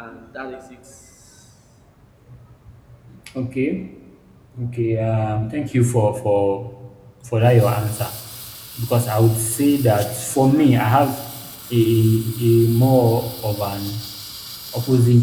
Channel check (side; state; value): both; identical; correlation 1.00